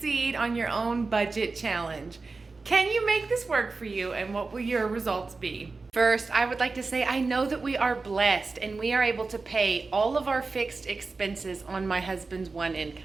on your own budget challenge. Can you make this work for you, and what will your results be? First, I would like to say I know that we are blessed and we are able to pay all of our fixed expenses on my husband's one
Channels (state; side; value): quieter; left; 4.0 dB